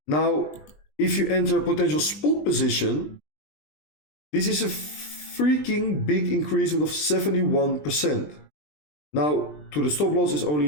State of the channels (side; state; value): right; late; 20 ms